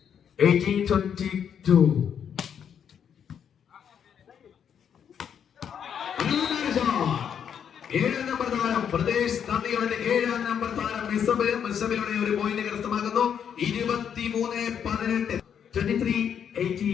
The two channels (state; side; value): quieter; right; 8.2 dB